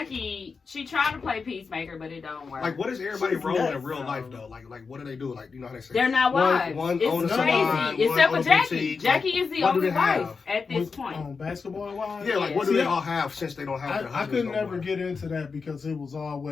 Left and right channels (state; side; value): quieter; right; 5.0 dB